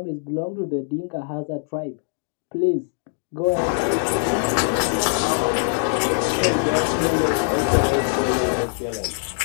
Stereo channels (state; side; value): silent; right; digital silence